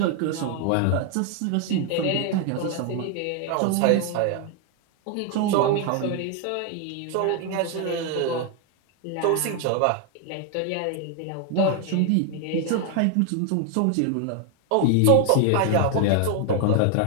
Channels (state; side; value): different; both; correlation 0.01